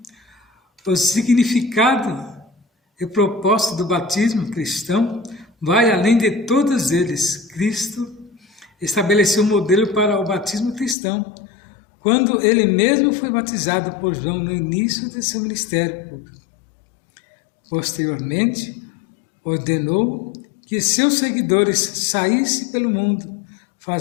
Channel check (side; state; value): right; drops out; at 11.0 s